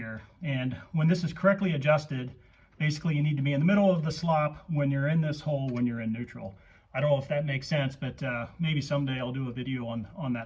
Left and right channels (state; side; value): identical; both; correlation 1.00